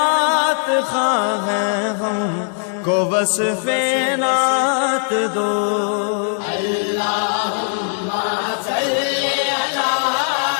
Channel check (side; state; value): right; silent; digital silence